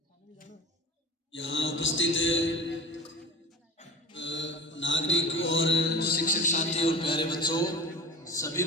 यहाँ उपस्थित नागरिक और शिक्षक साथी और प्यारे बच्चों, सभी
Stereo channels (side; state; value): both; normal; correlation 0.34